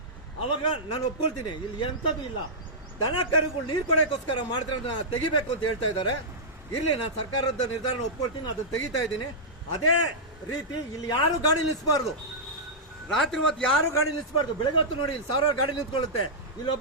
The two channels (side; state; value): both; normal; correlation -0.11